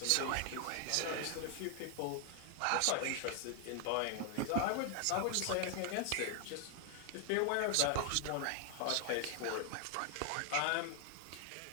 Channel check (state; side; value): different; both; correlation 0.00